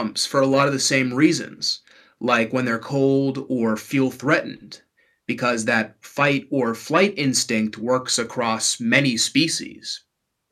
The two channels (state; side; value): identical; both; correlation 1.00